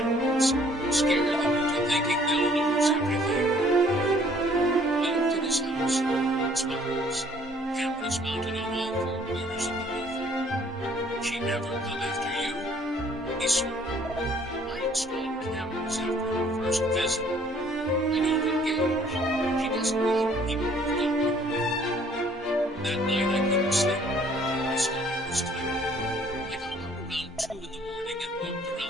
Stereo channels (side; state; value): both; normal; correlation 0.59